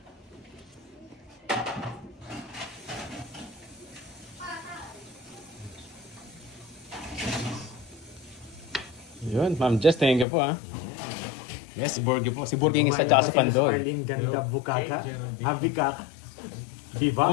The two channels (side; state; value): right; drops out; at 10.2 s